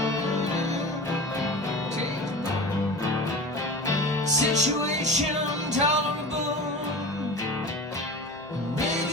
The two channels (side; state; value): both; normal; correlation 0.32